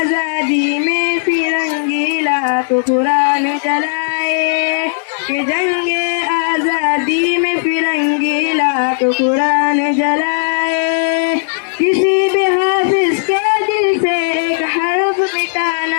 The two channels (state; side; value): silent; right; digital silence